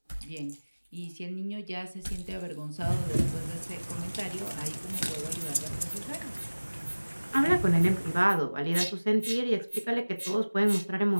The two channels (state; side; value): inverted; both; correlation -1.00